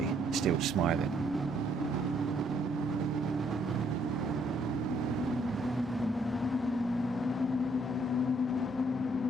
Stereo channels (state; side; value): normal; both; correlation 0.68